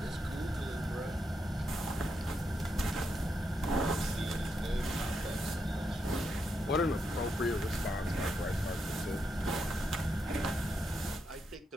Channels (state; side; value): normal; both; correlation 0.82